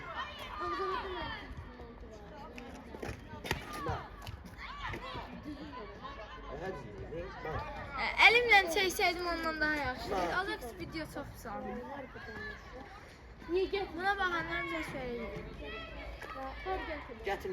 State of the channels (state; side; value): identical; both; correlation 1.00